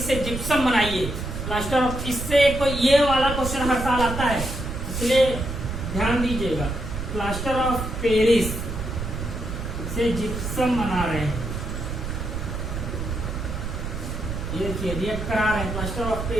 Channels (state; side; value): noise; right; rumble, 5 dB below the sound